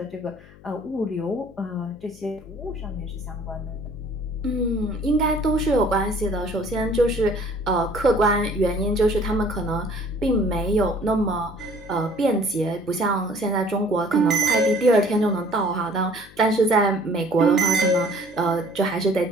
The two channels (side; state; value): left; noise; hum, 23 dB below the sound